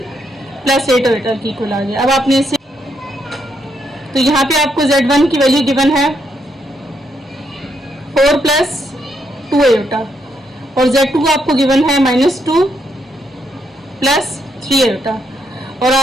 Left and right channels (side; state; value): both; normal; correlation 0.77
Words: plus 8 iota की इक्वल आ गया। अब आपने इसे, तो यहाँ पे आपको z1 की वैल्यू गिवन है 4 प्लस 2 आयोटा और z2 आपको गिवन है -2 प्लस 3 आयोटा। और